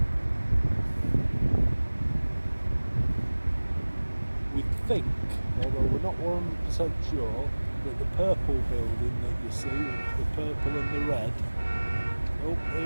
We think, although we're not 100% sure, that the purple building that you see, the purple and the red, oh,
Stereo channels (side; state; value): both; inverted; correlation -1.00